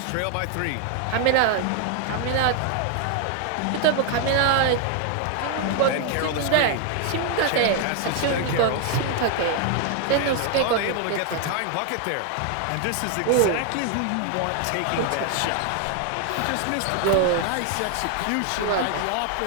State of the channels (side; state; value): both; different; correlation 0.00